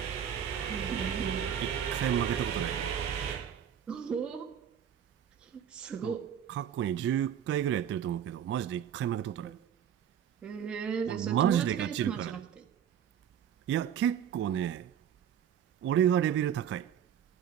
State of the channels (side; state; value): left; quieter; 9.1 dB